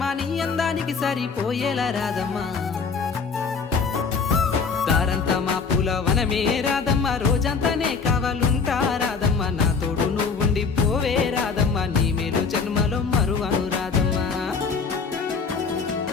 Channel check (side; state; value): right; quieter; 5.3 dB